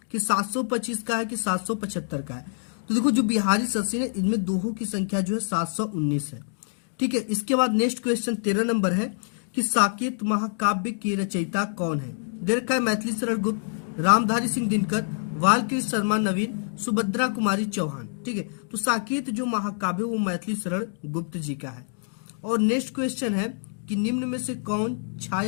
कि 725 का है, कि 775 का है। तो देखो जो बिहारी सतसई है इनमें दोहों की संख्या जो है 719 है। ठीक है, इसके बाद नेक्स्ट क्वेश्चन 13 नंबर है कि साकेत महाकाव्य के रचयिता कौन है। दे रखा है मैथिली शरण गुप्त, रामधारी सिंह दिनकर, बालकृष्ण शर्मा नवीन, सुभद्रा कुमारी चौहान। ठीक है, तो साकेत जो महाकाव्य वो मैथिली शरण गुप्त जी का है। और नेक्स्ट क्वेश्चन है कि निम्न में से कौन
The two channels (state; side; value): silent; right; digital silence